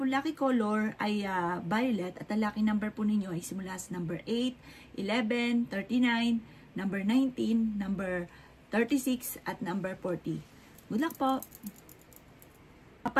lucky color ay violet at ang lucky number po ninyo ay simula sa number 8, 11, 39, number 19, number 36 at number 40. Good luck po!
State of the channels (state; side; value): identical; both; correlation 1.00